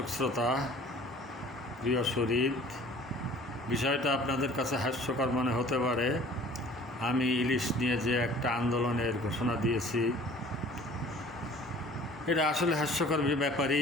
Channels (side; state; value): both; normal; correlation 0.49